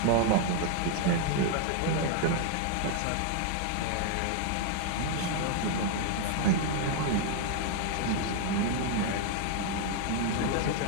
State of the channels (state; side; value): different; both; correlation 0.00